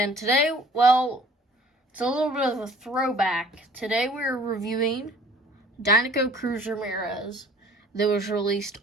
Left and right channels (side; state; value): both; normal; correlation 0.51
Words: today, well, it's a little bit of a throwback. Today we're reviewing Dinoco Cruz Ramirez that was released